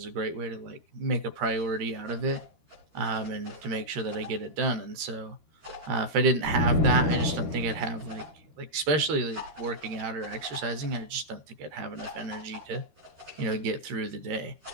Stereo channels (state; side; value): late; left; 13 ms